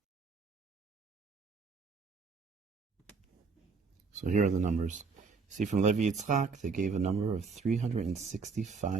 So here are the numbers. See, from Levi Yitzchak, they gave a number of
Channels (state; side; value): quieter; left; 4.9 dB